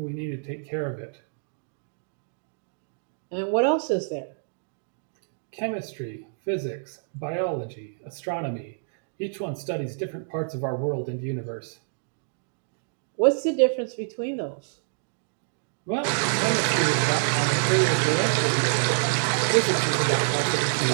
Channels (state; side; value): silent; left; digital silence